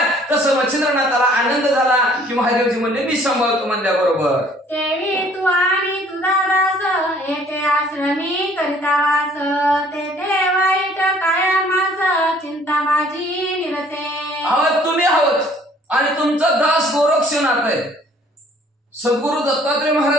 तसं मच्छिंद्रनाथाला आनंद झाला की महादेवजी म्हणले मी सांभाळतो म्हणल्याबरोबर. देवी तू आणि तुझा दास येथे आश्रमी करिता वास ते वाईट कायमास चिंता माझी निरसे. आहोत तुम्ही आहोत आणि तुमचा दास गोरक्षनाथ आहे. सद्गुरु दत्तात्रय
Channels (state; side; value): normal; both; correlation 0.57